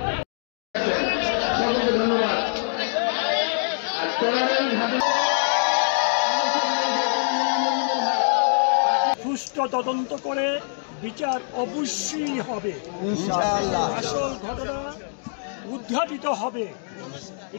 সুষ্ঠু তদন্ত করে বিচার অবশ্যই হবে, ইনশাআল্লাহ। আসল ঘটনা উদ্ঘাটিত হবে,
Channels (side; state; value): right; silent; digital silence